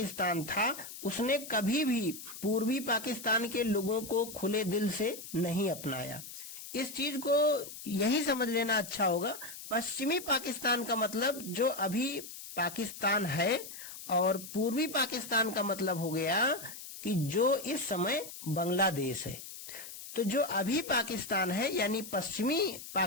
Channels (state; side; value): noise; left; hiss, 12 dB below the sound